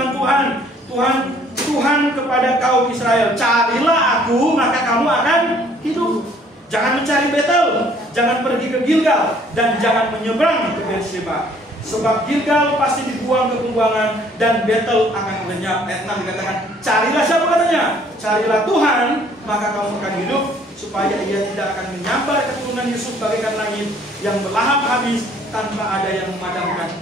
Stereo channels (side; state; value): both; normal; correlation 0.59